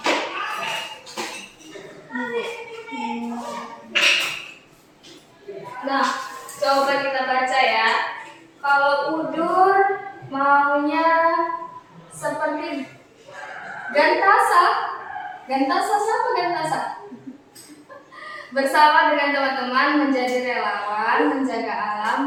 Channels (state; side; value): identical; both; correlation 1.00